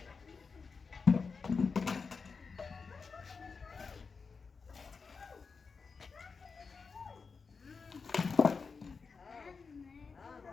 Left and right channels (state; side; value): quieter; right; 5.0 dB